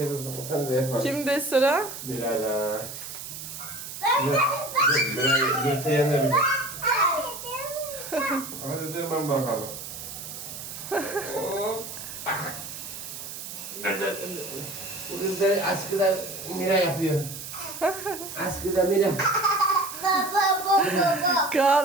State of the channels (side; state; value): right; noise; hiss, 10 dB below the sound